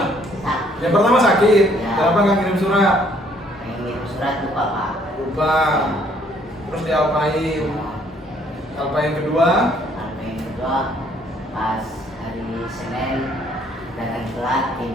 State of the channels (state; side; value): normal; both; correlation 0.64